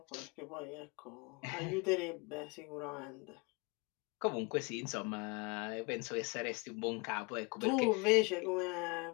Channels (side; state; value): right; quieter; 28.6 dB